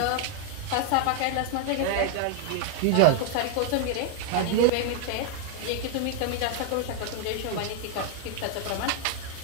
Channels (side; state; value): both; different; correlation 0.00